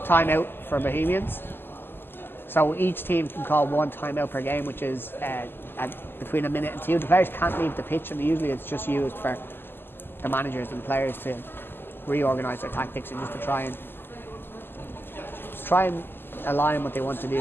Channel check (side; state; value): right; late; 0.10 ms